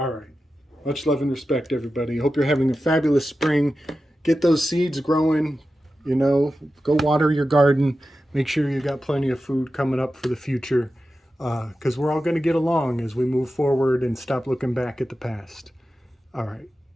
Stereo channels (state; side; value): normal; both; correlation 0.92